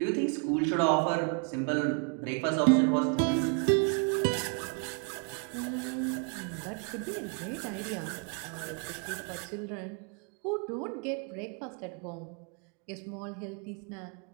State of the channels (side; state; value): left; quieter; 37.2 dB